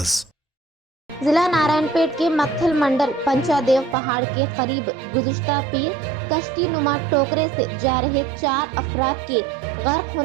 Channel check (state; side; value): drops out; left; at 4.0 s